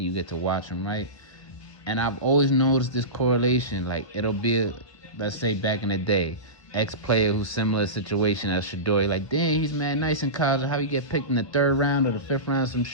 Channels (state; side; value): late; right; 1.1 ms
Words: you get to watch them, right? And I've always noticed this correlation. Like, it'll be, let's say back in the day, ex-player who's similar situation as Shador. Like, damn, he's mad nice in college. How he get picked in the 3rd round or the 5th round, some